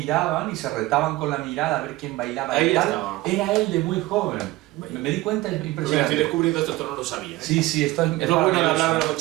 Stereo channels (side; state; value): left; quieter; 18.7 dB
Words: y se retaban con la mirada a ver quién bailaba. Ahí y tal. estaba. Era él de muy joven. Me di cuenta, es Mira, impresionante. estoy descubriendo esto no lo sabía. Sí, esto es Es lo bueno de maravilloso. hablar de los